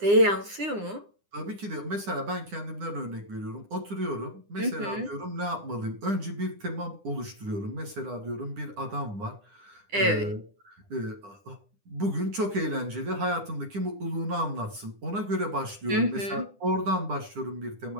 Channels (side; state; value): left; late; 9.9 ms